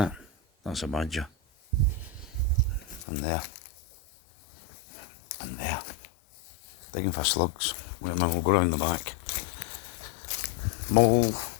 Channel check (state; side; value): drops out; right; at 3.0 s